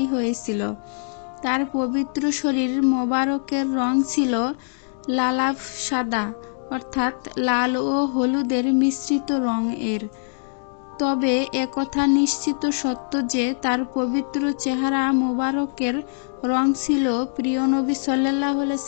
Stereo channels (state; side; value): silent; right; digital silence